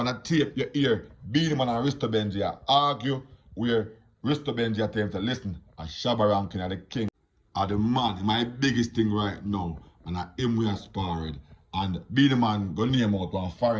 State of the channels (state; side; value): identical; both; correlation 1.00